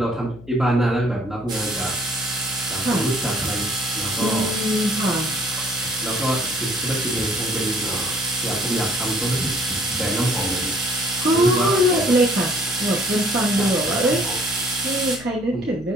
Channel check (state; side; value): noise; left; hum, 18 dB below the sound